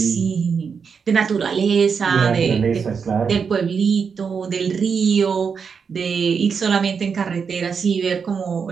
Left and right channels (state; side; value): quieter; left; 6.0 dB